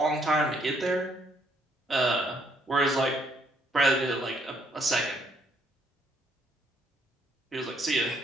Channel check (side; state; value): both; normal; correlation 0.69